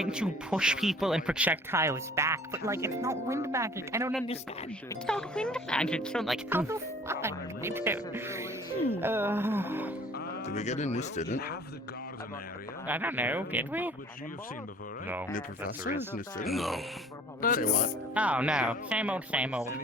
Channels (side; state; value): both; normal; correlation 0.51